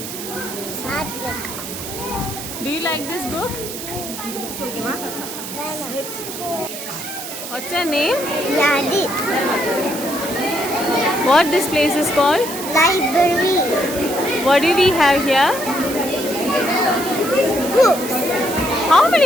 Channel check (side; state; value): right; noise; hiss, 9 dB below the sound